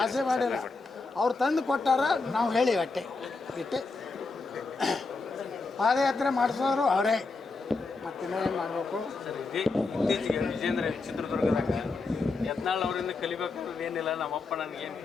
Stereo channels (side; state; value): right; quieter; 3.9 dB